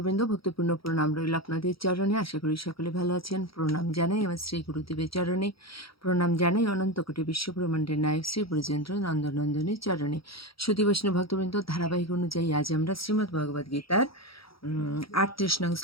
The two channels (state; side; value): late; right; 0.75 ms